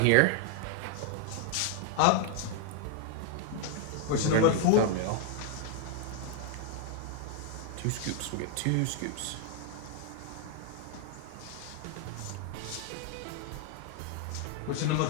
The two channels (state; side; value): different; both; correlation 0.00